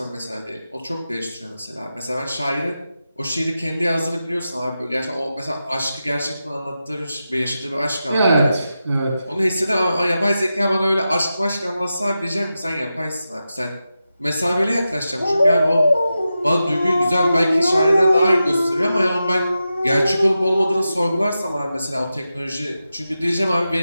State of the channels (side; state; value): both; inverted; correlation -0.91